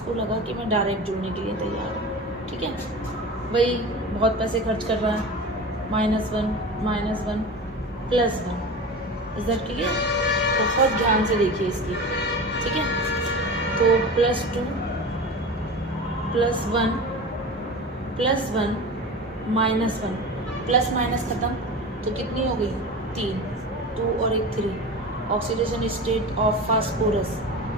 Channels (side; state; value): both; normal; correlation 0.31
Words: लगा कि मैं डायरेक्ट जुड़ने के लिए तैयार हूँ, ठीक है। भाई बहुत पैसे खर्च कर रहा है, -1 -1 +1, इज दैट क्लियर? बहुत ध्यान से देखिए इसकी, ठीक है। तो +2 +1 +1 -1, प्लस माइनस ख़त्म, तो कितनी हो गई, 3, 2 और 1 3। ऑक्सीडेशन स्टेट ऑफ फास्फोरस